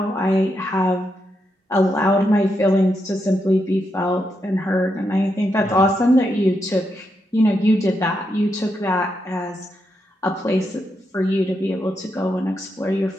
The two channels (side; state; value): both; normal; correlation 0.83